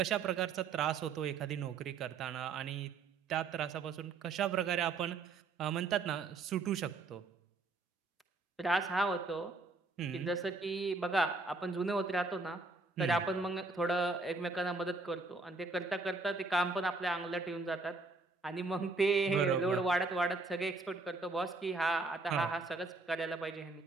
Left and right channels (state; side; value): quieter; left; 3.8 dB